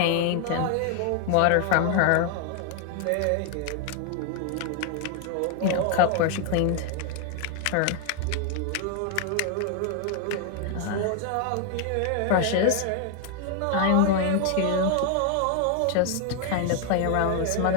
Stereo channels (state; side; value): different; both; correlation 0.00